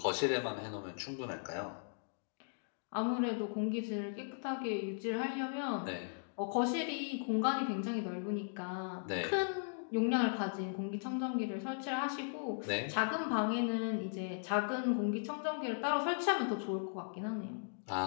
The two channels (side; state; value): right; silent; digital silence